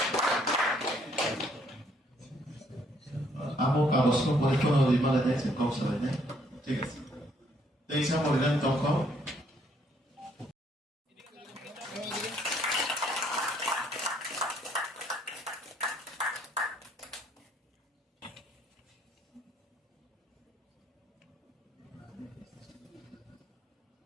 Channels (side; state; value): both; normal; correlation 0.67